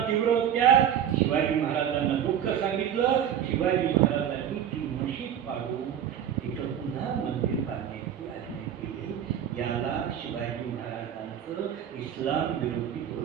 तीव्र होत्या. शिवाजी महाराजांना दुःख सांगितलं. शिवाजी महाराजांनी ती मशीद पाडून तिथं पुन्हा मंदिर बांधण्याची आज्ञा केली. याला शिवाजी महाराजांचं इस्लाम विरोधी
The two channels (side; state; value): left; quieter; 9.4 dB